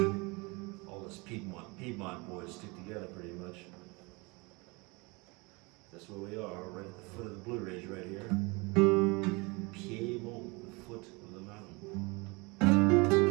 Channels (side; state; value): left; quieter; 27.0 dB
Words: Piedmont boys stick together pretty much. That's where we are, right at the foot of the Blue Ridge right here. Piedmont, the foot of the mountain.